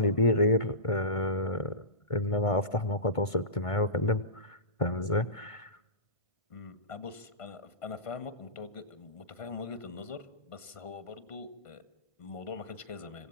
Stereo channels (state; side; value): late; right; 1.5 ms